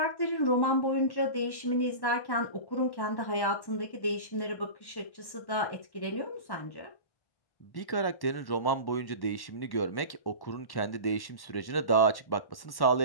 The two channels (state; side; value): late; right; 1.1 ms